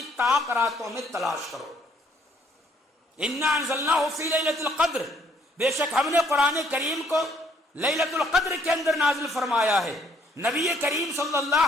طاق راتوں میں تلاش کرو. انا انزلناہ فی لیلۃ القدر, بے شک ہم نے قرآن کریم کو لیلۃ القدر کے اندر نازل فرمایا ہے. نبی کریم صلی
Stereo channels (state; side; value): normal; both; correlation 0.65